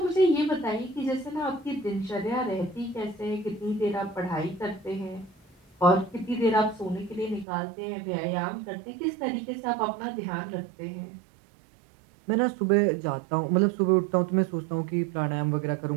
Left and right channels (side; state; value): left; drops out; at 7.5 s